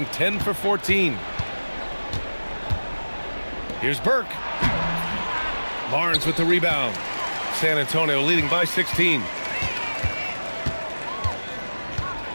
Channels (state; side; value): inverted; both; correlation -1.00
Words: 10 for 14. Here's Burke. Barnes with the rebound. San Antonio leading by 16.